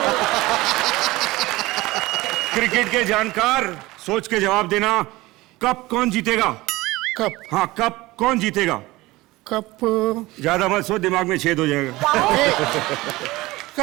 क्रिकेट के जानकार, सोच के जवाब देना. कप कौन जीतेगा? कप? हाँ कप कौन जीतेगा? कप ज्यादा मत सोच, दिमाग में छेद हो जाएगा.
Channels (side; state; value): left; quieter; 19.7 dB